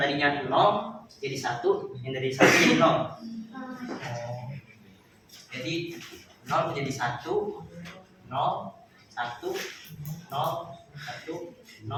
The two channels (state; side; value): identical; both; correlation 1.00